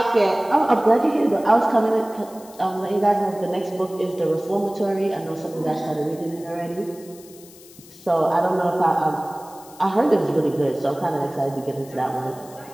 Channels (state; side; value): noise; left; hiss, 22 dB below the sound